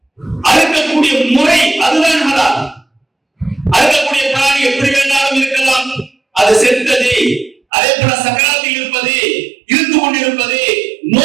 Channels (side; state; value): left; drops out; at 7.6 s